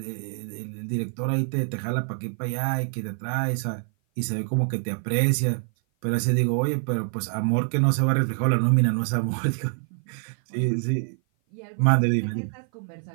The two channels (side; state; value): left; silent; 56 dB below the other